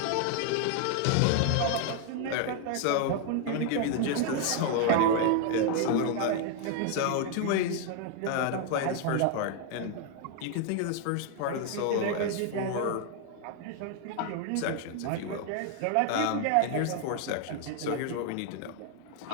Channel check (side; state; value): both; different; correlation 0.00